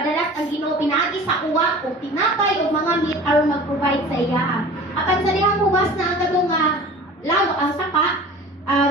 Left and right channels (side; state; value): both; normal; correlation 0.41